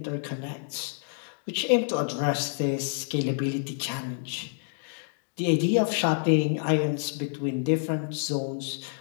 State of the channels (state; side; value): silent; right; digital silence